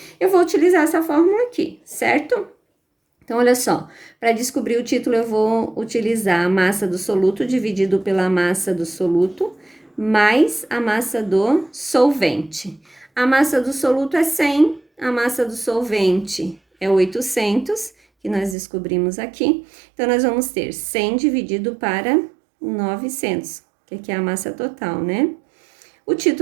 eu vou utilizar essa fórmula aqui, certo? Então, olha só, para descobrir o título, eu vou utilizar a massa do soluto dividido pela massa do soluto, mais a massa do solvente. A massa do soluto é 100, a massa do solvente é 800, que nós descobrimos aqui. Então, nós vamos ter 100 dividido para 900, que aqui é a massa total, né? O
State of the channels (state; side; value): drops out; left; at 18.6 s